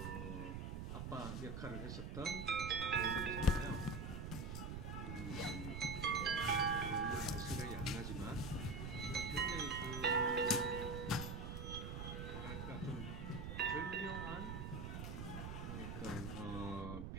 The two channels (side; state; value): right; noise; rumble, 5 dB below the sound